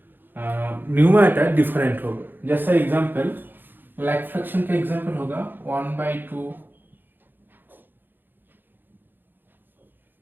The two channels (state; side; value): late; left; 0.094 ms